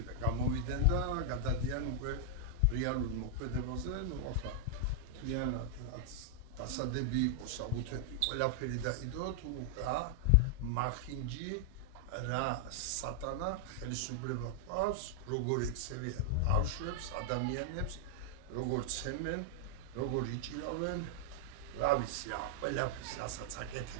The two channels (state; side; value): normal; both; correlation -0.01